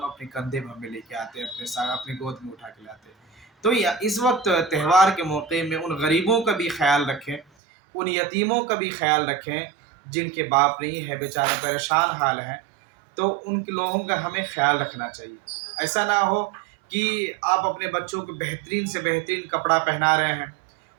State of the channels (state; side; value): drops out; left; at 7.5 s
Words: اپنے کندھے میں ہمیں لے کے آتے، اپنے ساتھ اپنی گود میں اٹھا کے لاتے۔ تو اس وقت تہوار کے موقع میں ان غریبوں کا بھی خیال رکھیں، ان یتیموں کا بھی خیال رکھیں جن کے باپ نہیں ہے، بیچارے پریشان حال ہیں، تو ان کے لوگوں کا ہمیں خیال رکھنا چاہیے۔ ایسا نہ ہو کہ آپ اپنے بچوں کو بہترین سے بہترین کپڑا پہنا رہے ہیں،